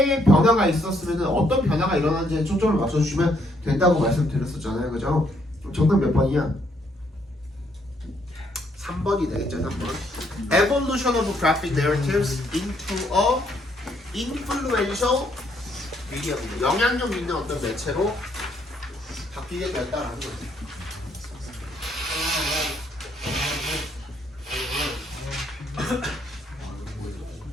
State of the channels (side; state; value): both; normal; correlation 0.71